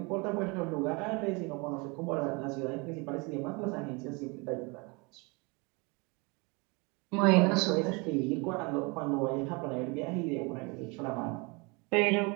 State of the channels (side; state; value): left; quieter; 28.8 dB